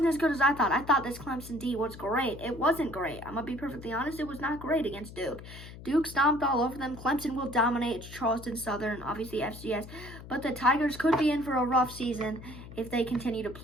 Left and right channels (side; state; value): left; noise; hum, 15 dB below the sound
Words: as good as I thought. I thought this Clemson D was great. It wasn't great. I'm going to be perfectly honest. It was not great against Duke. Duke stomped all over them. Clemson will dominate. It's Charleston Southern, obviously FCS. But the Tigers could be in for a rough season if they continue to